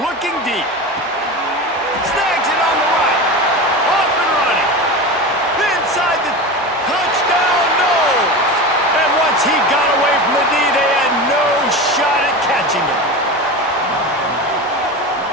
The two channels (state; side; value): normal; both; correlation 0.26